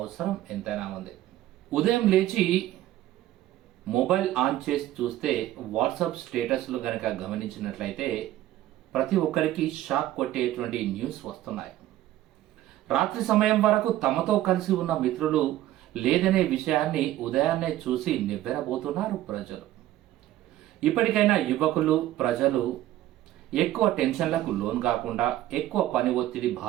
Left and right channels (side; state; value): left; quieter; 14.2 dB